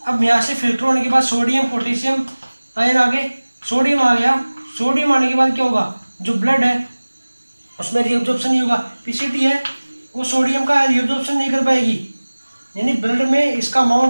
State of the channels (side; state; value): both; inverted; correlation -1.00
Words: अब यहाँ से फिल्टर होने के बाद सोडियम पोटेशियम आयन आगे, सोडियम आ गया, सोडियम आने के बाद क्या होगा, जो ब्लड है उसमें रीअब्जॉर्प्शन नहीं होगा, पीसीटी है वो सोडियम का रीअब्जॉर्प्शन नहीं कर पाएगी, यानी ब्लड में इसका